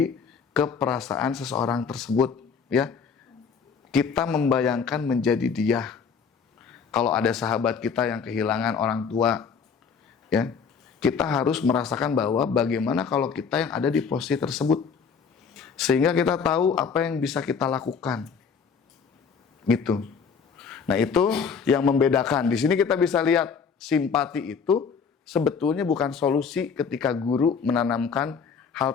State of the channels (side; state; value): right; quieter; 6.0 dB